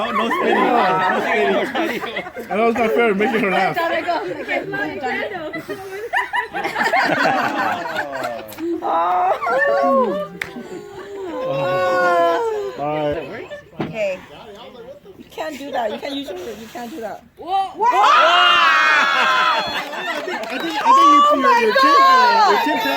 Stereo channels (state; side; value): identical; both; correlation 1.00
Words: spinning. No spinning. I know it's not fair making her laugh. Alright. Okay. You can't do that. You can't use your. You can't do that. I think your chin